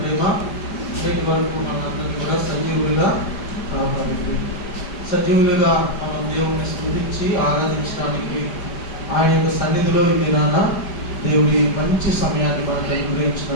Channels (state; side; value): late; right; 5.0 ms